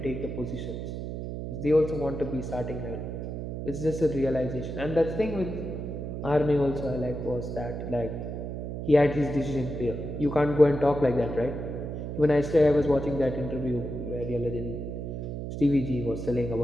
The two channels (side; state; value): right; noise; hum, 6 dB below the sound